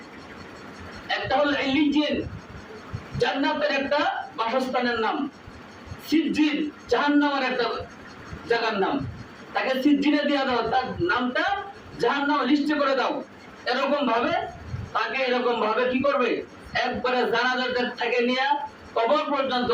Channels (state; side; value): identical; both; correlation 1.00